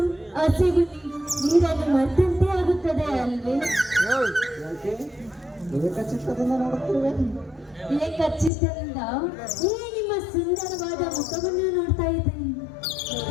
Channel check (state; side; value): drops out; right; at 8.5 s